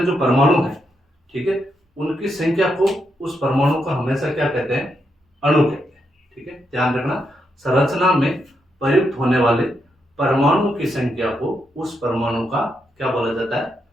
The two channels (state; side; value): normal; both; correlation 0.81